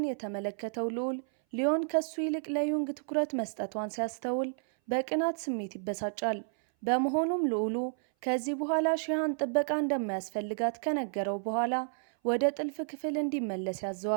የተመለከተው ልዑል ሊዮን ከሱ ይልቅ ለዩንግ ትኩረት መስጠቷን ሲያስተውል በቅናት ስሜት ይበሳጫል። በመሆኑም ልዑሉ ከዚህ በኋላ ሺሃን ጥበቃ እንደማያስፈልጋት ከነገረው በኋላ ወደ ጥልፍ ክፍል እንዲመለስ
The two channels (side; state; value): left; silent; 57 dB below the other